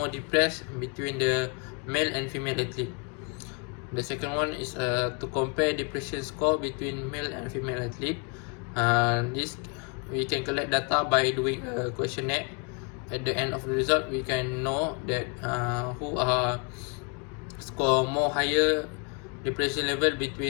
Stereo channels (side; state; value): right; quieter; 33.7 dB